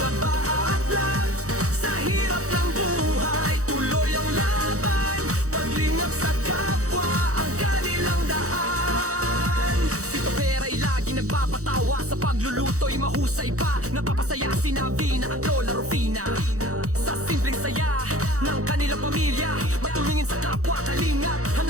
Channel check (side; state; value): left; late; 0.65 ms